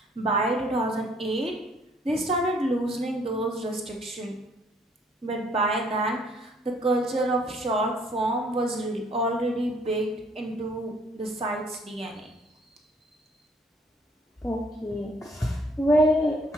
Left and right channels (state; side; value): normal; both; correlation 0.62